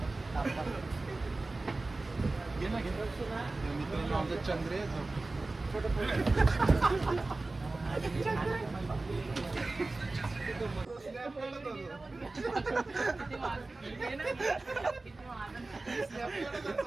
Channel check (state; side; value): quieter; left; 3.2 dB